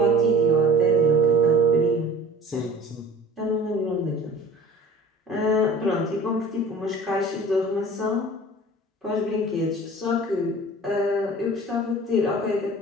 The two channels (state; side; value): normal; both; correlation 0.43